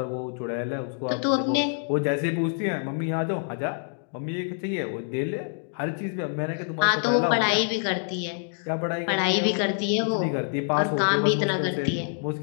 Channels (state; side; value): silent; right; 60 dB below the other